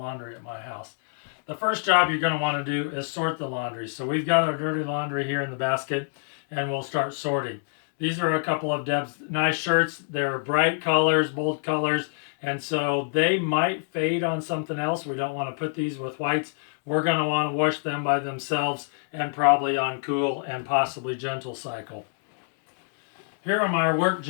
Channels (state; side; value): silent; right; digital silence